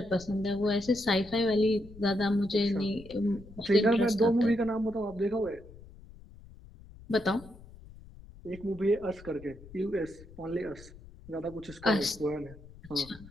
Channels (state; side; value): noise; left; rumble, 19 dB below the sound